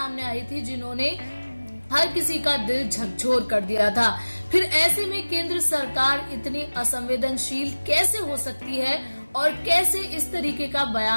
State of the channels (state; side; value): inverted; both; correlation -1.00